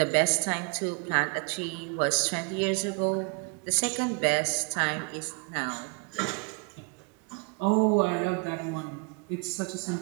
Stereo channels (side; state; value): left; quieter; 32.4 dB